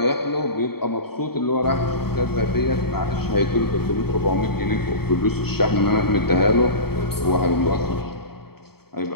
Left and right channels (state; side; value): late; right; 0.96 ms